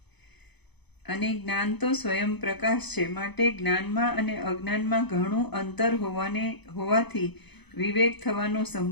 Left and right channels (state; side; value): late; right; 0.99 ms